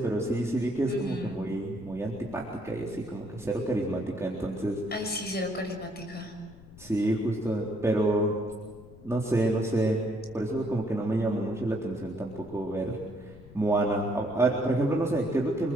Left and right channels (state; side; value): noise; left; rumble, 20 dB below the sound